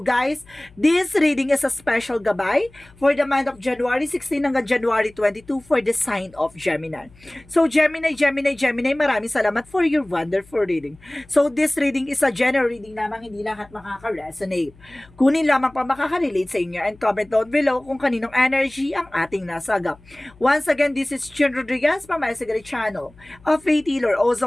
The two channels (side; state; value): left; noise; hum, 26 dB below the sound